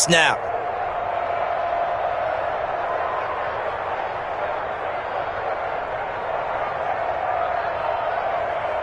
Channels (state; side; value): identical; both; correlation 1.00